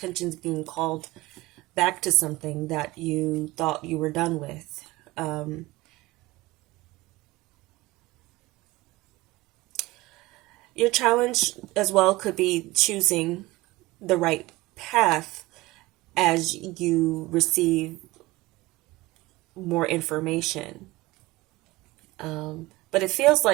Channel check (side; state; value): left; quieter; 19.8 dB